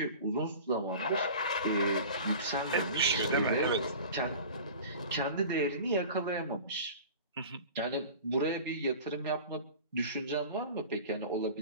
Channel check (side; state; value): both; inverted; correlation -0.38